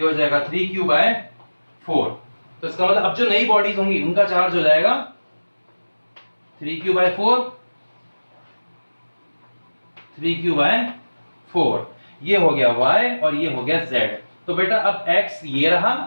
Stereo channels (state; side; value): inverted; both; correlation -1.00